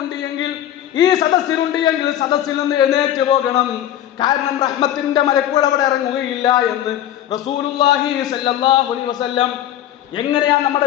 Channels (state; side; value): quieter; right; 11.7 dB